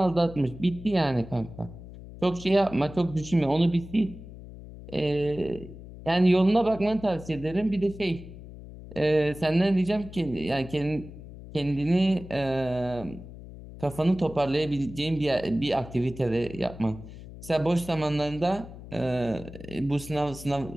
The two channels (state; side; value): noise; left; hum, 15 dB below the sound